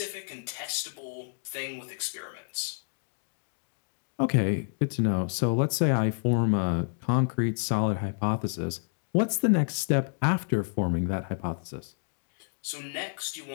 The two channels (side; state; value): right; silent; digital silence